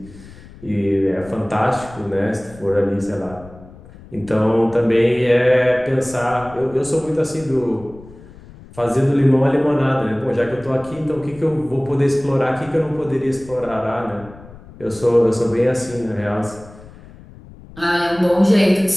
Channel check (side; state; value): left; noise; rumble, 20 dB below the sound